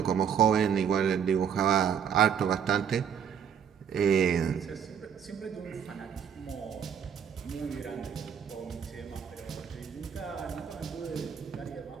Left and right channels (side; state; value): left; quieter; 8.0 dB